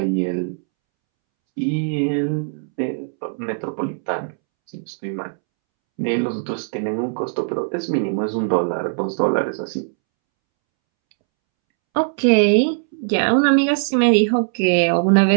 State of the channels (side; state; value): left; silent; 66 dB below the other